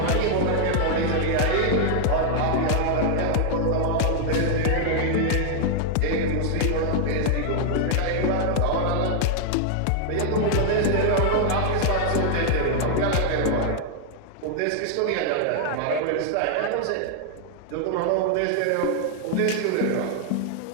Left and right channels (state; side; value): different; both; correlation 0.00